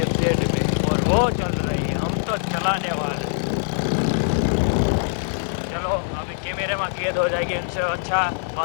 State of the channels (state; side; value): silent; right; digital silence